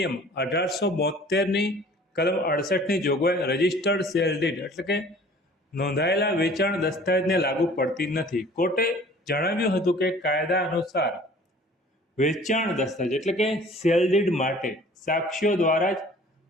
1872ની કલમ 68ની જોગવાઈ રજિસ્ટર્ડ સેલ ડીડ એટલે કે નોંધાયેલા વેચાણ દસ્તાવેજને લાગુ પડતી નથી. કોર્ટે જણાવ્યું હતું કે કાયદા અનુસાર વેચાણ દસ્તાવેજ એટલે કે સેલ ડીડ માટે સાક્ષીઓ દ્વારા જ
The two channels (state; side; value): normal; both; correlation 0.50